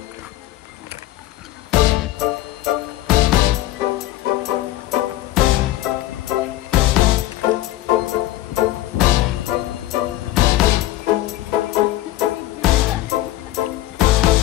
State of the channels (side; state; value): right; quieter; 15.5 dB